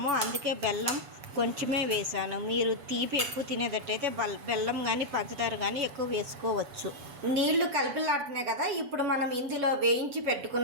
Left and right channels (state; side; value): late; left; 7.0 ms